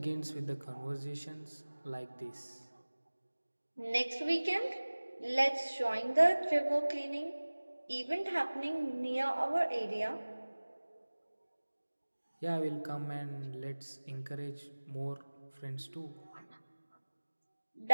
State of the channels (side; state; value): both; inverted; correlation -1.00